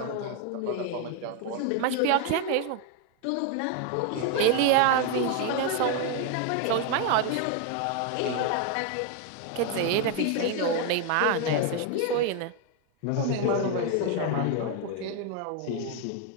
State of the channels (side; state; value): both; different; correlation 0.01